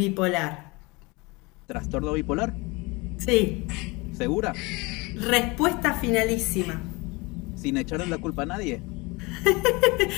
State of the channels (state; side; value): quieter; right; 25.5 dB